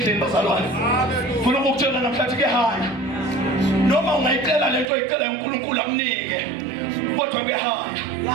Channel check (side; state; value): left; drops out; at 4.9 s